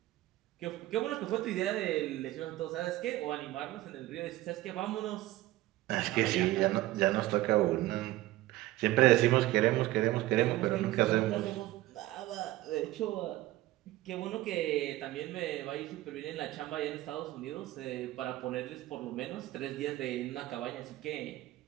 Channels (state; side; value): quieter; left; 16.7 dB